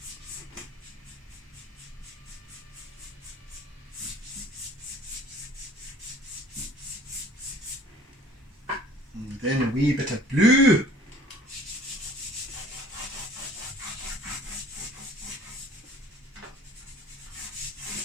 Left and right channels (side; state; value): both; normal; correlation 0.52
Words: And then a wee bit of blue.